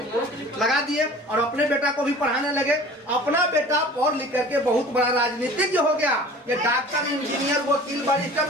लगा दिए और अपने बेटा को भी पढ़ाने लगे। अपना बेटा पढ़ लिख करके बहुत बड़ा राजनीतिज्ञ हो गया। ये डॉक्टर, इंजीनियर, वकील, बैरिस्टर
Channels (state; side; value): normal; both; correlation 0.44